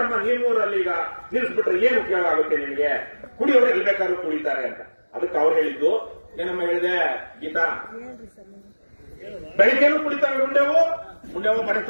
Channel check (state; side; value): inverted; both; correlation -1.00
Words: ನಿಮ್ಮೂರಲ್ಲಿ ಈಗ ನಿಲ್ಲಿಸ್ಬಿಟ್ರೆ ಏನು ಉಪಯೋಗ ಆಗುತ್ತೆ ನಿಮಗೆ? ಕುಡಿಯೋರು ಎಲ್ಲಿ ಬೇಕಾದ್ರೂ ಕುಡಿತಾರೆ ಅಂತ. ಅದಕ್ಕೆ ಅವ್ರು ಹೇಳಿದ್ದು ಏನಮ್ಮ ಹೇಳಿದೆ ಗೀತಾ, ಬೆಳಿಗ್ಗೆನೂ ಕುಡಿತಾರೆ ಮುಂಡೆವು